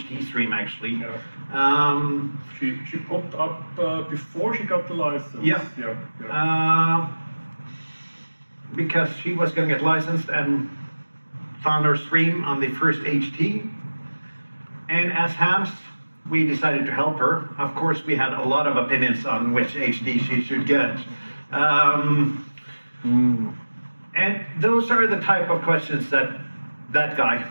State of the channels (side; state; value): both; inverted; correlation -1.00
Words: stream, actually. Yeah. She popped up before she got the license. Yeah. Yeah. Because she was going to get licensed and found her stream on the first HT. And as hams, we decided to help her. Of course, we had a lot of opinions on which HD she should get. And those are the type of questions that guy,